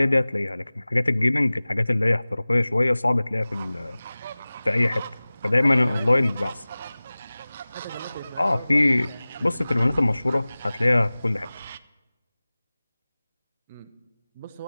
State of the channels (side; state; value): both; inverted; correlation -0.99